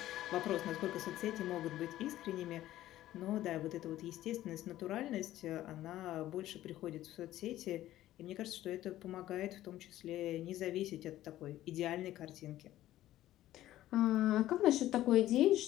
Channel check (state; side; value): quieter; right; 14.2 dB